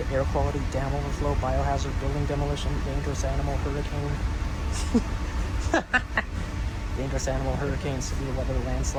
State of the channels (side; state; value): both; identical; correlation 1.00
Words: air quality, dam overflow, biohazard, building demolition, dangerous animal, hurricane, dangerous animal, hurricane, severe weather,